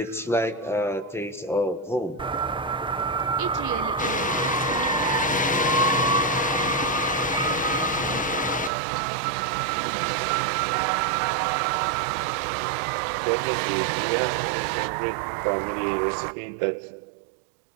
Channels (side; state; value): left; drops out; at 8.7 s